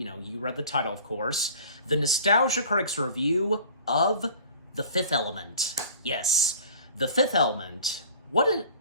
read the title, of course, the Nostalgia Critic's review of The Fifth Element. Yes, The Fifth Element. What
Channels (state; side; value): inverted; both; correlation -0.46